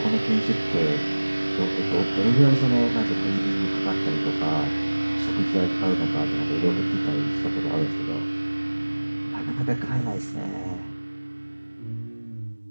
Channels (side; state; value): both; inverted; correlation -1.00